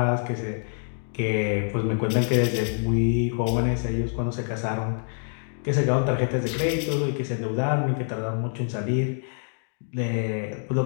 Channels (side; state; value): right; silent; digital silence